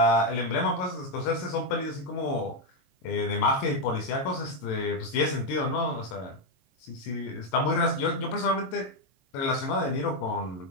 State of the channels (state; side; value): late; right; 22 ms